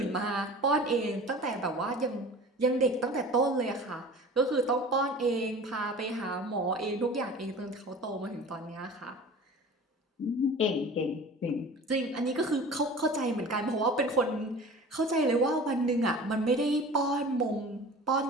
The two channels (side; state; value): both; normal; correlation 0.40